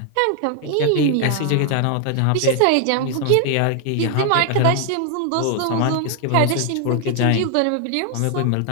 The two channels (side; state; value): both; different; correlation 0.00